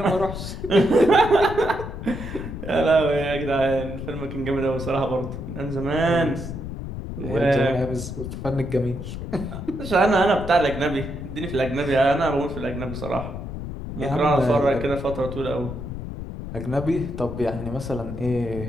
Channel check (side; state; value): left; noise; rumble, 8 dB below the sound